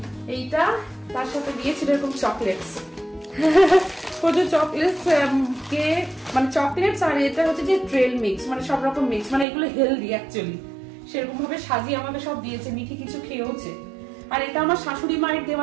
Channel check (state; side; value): drops out; left; at 9.5 s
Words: এইটা, তার সাথে দিয়েছিল এরকম চকলেটস, প্রচুর চকলেটস, কেক, মানে চকলেটস। আর এটা হচ্ছে যে ট্রেল মিক্স, মানে সব রকম মিক্স, মানে এগুলো হেলদি অ্যাকচুয়ালি। সেরকম ভাবে সাজিয়ে আমাকে সব দিয়েছে, মিঠি কিছু খেয়েওছে। আর এটা আমার শাশুড়ি মায়ের